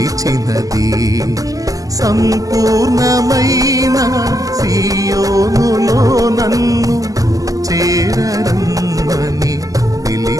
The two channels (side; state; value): left; late; 0.17 ms